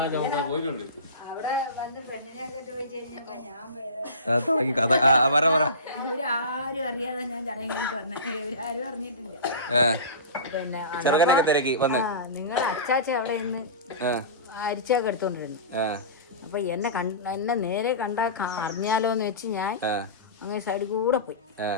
ചുമക്കാൻ പോയിട്ടുണ്ട്. അവിടെ വന്ന് പെണ്ണിനെയൊക്കെ ചോദിച്ചു കഴിഞ്ഞപ്പോ ഞാൻ ഇവരാരും അറിയാതെ ഞാൻ ചടങ്ങി തന്നെ, ഇവരാരും അറിഞ്ഞിട്ടില്ല. പിന്നെ നിങ്ങളുടെ അച്ചാച്ച അവിടെ നിന്ന് അരിച്ചൊക്കെ എടുത്തോണ്ടിരുന്നു. അപ്പൊ എന്നെ നേരെ കണ്ടാ അറിഞ്ഞാലോന്ന് വെച്ച് ഞാൻ അങ്ങ് സൈഡിൽ കൂടെ പോയി.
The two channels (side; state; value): both; inverted; correlation -0.30